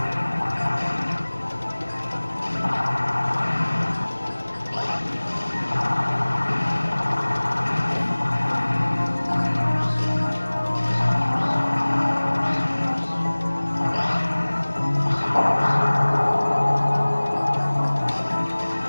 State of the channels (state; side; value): inverted; both; correlation -1.00